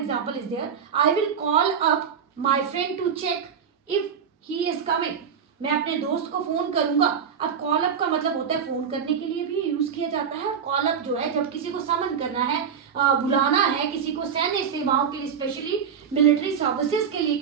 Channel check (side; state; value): left; quieter; 7.2 dB